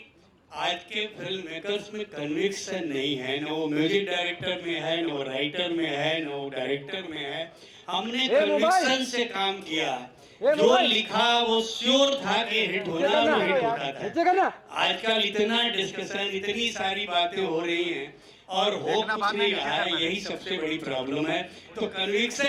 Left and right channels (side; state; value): both; identical; correlation 1.00